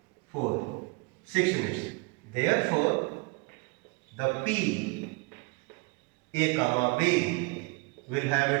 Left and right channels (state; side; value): quieter; left; 27.8 dB